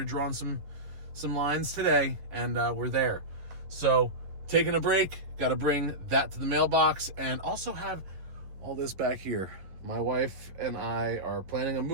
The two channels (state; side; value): late; left; 11 ms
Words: drawing some lines today, and we're there. So, taking a break, got to bring that to the mailbox, and also have all this back here. My wife and I are planning a